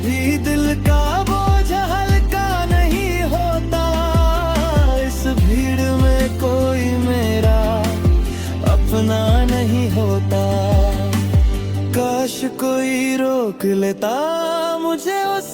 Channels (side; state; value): both; identical; correlation 1.00